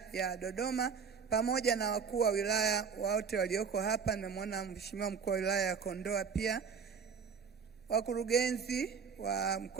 ya Dodoma, pamoja na wakuu wa wilaya wote walioko hapa. Nimemwona Mheshimiwa mkuu wa wilaya ya Kondoa pia, wakurugenzi wa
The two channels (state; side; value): quieter; left; 6.1 dB